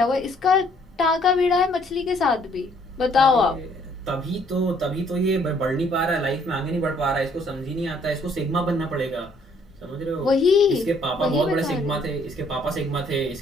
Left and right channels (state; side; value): normal; both; correlation 0.64